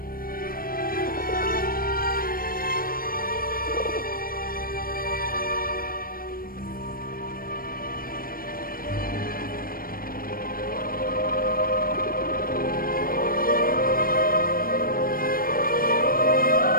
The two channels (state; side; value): late; right; 0.42 ms